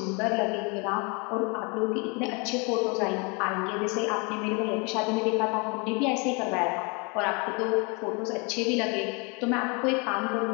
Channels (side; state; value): right; quieter; 31.6 dB